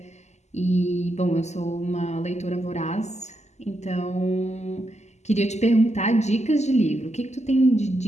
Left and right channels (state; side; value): late; right; 0.33 ms